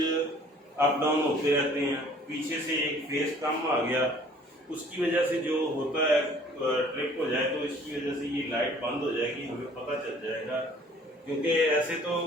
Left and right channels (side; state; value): both; normal; correlation 0.54